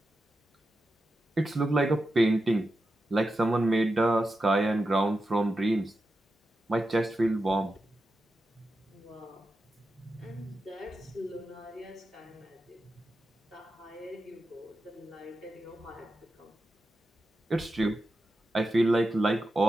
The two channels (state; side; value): normal; both; correlation 0.90